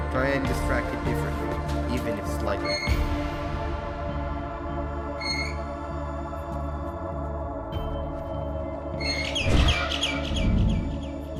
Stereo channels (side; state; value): both; identical; correlation 1.00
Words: Try and distract it differently, even if slightly.